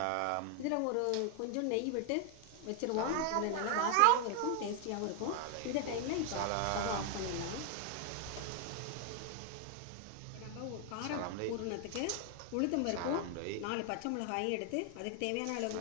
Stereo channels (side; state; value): both; different; correlation 0.00